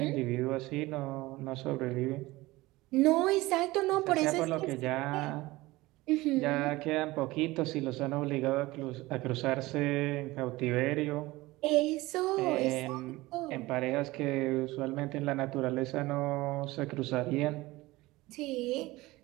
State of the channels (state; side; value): quieter; left; 19.7 dB